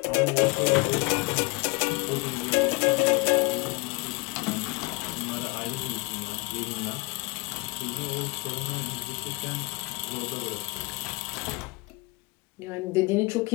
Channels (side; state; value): right; quieter; 27.5 dB